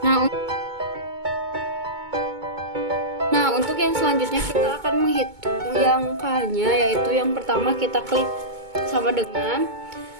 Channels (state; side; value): late; left; 2.2 ms